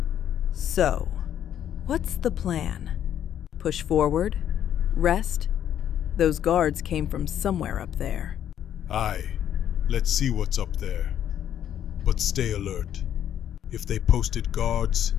So, what's the plan? Push forward? Rest? Those guards came from somewhere up there. Aye, let's see what's up there. But stay alert. If they posted guards,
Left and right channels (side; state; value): right; quieter; 10.2 dB